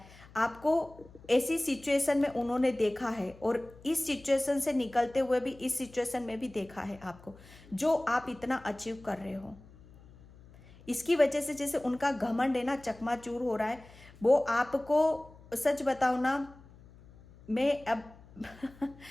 आपको ऐसी सिचुएशन में उन्होंने देखा है, और इस सिचुएशन से निकलते हुए भी इस सिचुएशन में भी देखा है आपको, जो आप इतना अचीव कर रहे हो। इसकी वजह से जैसे उनका घमंड है ना चकनाचूर हो रहा है। वो आपको, सच बताओ ना, मैं अब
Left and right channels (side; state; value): left; noise; hum, 22 dB below the sound